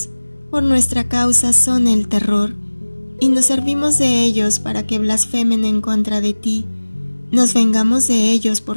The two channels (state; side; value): inverted; both; correlation -1.00